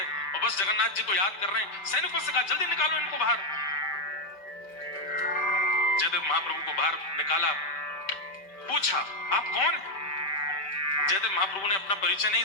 और बस जगन्नाथ जी को याद कर रहे हैं। सैनिकों से कहा जल्दी निकालो इनको बाहर। जयदेव महाप्रभु को बाहर निकाला, पूछा आप कौन हैं? जयदेव महाप्रभु ने अपना परिचय नहीं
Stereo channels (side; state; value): right; late; 5.1 ms